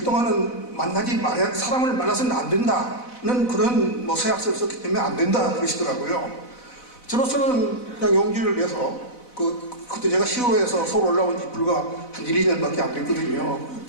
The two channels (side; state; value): right; late; 4.0 ms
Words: 동안은 사람을 만나서는 안 된다는 그런 뭐 서약서를 썼기 때문에 안 된다 그러시더라고요. 저로서는 그냥 용기를 내서 그때 제가 시로에서 서울 올라온 지 불과 한 1, 2년밖에 안 됐거든요.